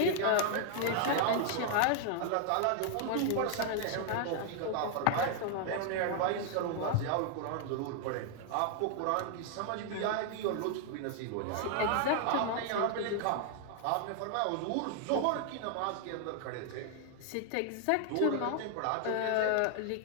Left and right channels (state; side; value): different; both; correlation 0.00